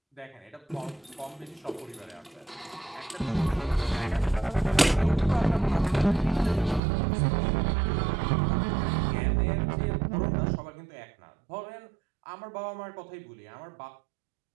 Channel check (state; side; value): drops out; left; at 6.8 s